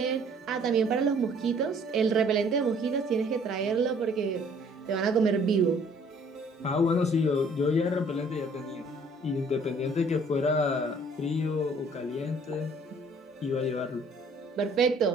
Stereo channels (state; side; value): normal; both; correlation 0.58